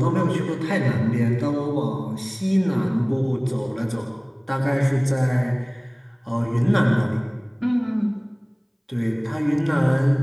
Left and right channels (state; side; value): identical; both; correlation 1.00